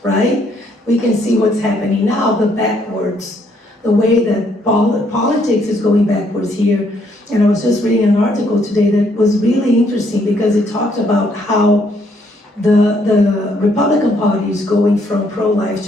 right? We can see what's happening now, the way that politics is going backwards here. And I was just reading an article today that was really interesting because it talked about how the Republican Party is going from pro-life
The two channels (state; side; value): normal; both; correlation 0.69